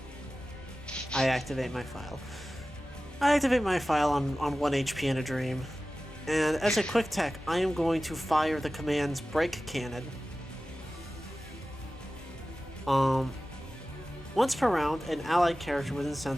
I activate my file. I activate my file on 1 HP in a dream. And as a quick tech, I am going to fire the command's break cannon. Once per round, an allied character within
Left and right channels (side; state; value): both; normal; correlation 0.96